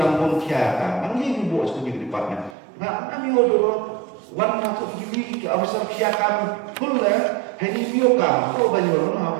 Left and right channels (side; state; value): left; drops out; at 2.6 s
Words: monkia kan. Yang ini buat studi department. Nah kami orang warna tu gini ke besar kia kami full lah. Hanya bio kami. Kau banyak orang